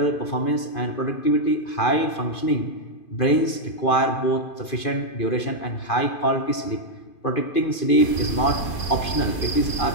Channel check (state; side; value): late; right; 2.5 ms